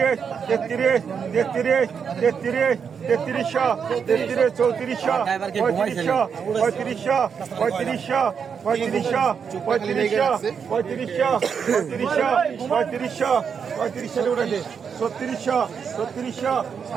তেত্রিশ তেত্রিশ তেত্রিশ তেত্রিশশো তেত্রিশ চৌত্রিশশো পঁয়ত্রিশশো পঁয়ত্রিশশো পঁয়ত্রিশশো পঁয়ত্রিশশো পঁয়ত্রিশশো পঁয়ত্রিশশো পঁয়ত্রিশশো পঁয়ত্রিশশো পঁয়ত্রিশশো উঠেছে ছত্রিশশো ছত্রিশশো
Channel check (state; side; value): quieter; left; 6.7 dB